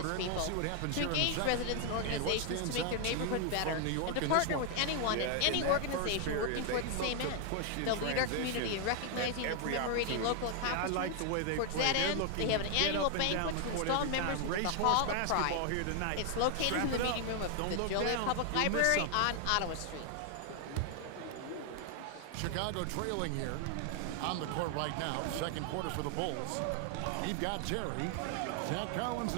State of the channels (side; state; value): both; different; correlation 0.00